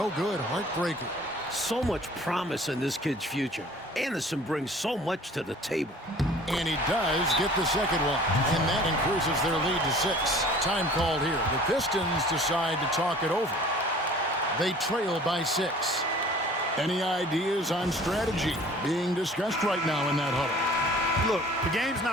good. Heartbreaker. So much promise in this kid's future. Anderson brings so much to the table. And he does get the second one. And that increases their lead to 6. Time called here. The Pistons decide to talk it over. They trail by 6. Any ideas on strategy being discussed right now in that huddle? Look, the game's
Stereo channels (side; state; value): both; normal; correlation 0.49